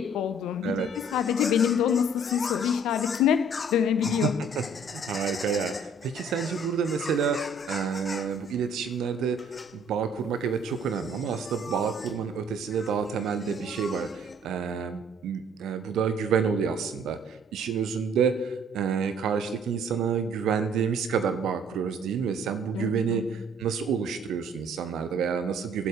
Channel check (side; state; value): both; normal; correlation 0.58